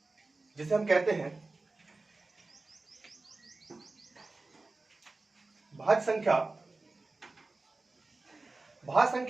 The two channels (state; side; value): quieter; left; 3.4 dB